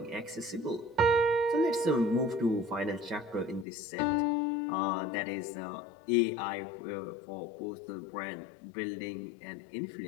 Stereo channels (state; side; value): drops out; right; at 3.7 s